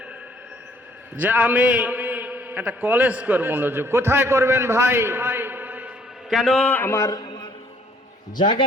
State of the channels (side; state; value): both; normal; correlation 0.62